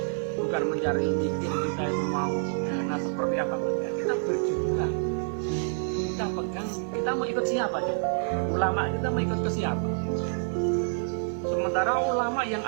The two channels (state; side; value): silent; left; 55 dB below the other